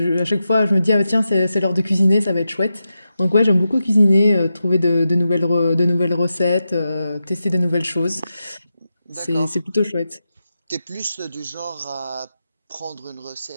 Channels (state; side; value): inverted; both; correlation -0.89